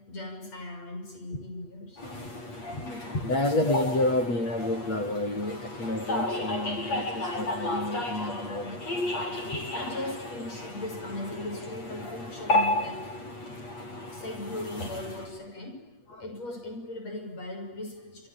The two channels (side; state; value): right; late; 8.4 ms